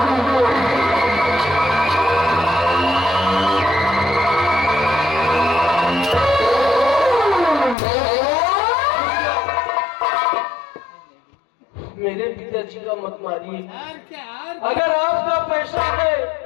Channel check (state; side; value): drops out; right; at 7.8 s